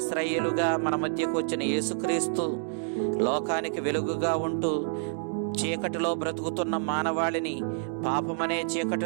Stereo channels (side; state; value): left; silent; digital silence